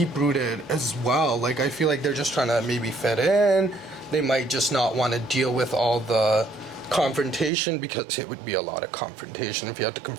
as well. Like, I feel like they're just trying to maybe fit in. They might just not want to deal with all the confrontation, because it would be a lot of confrontation if you have to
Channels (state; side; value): drops out; left; at 7.5 s